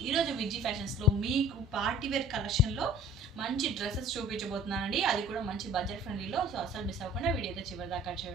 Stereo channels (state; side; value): normal; both; correlation 0.49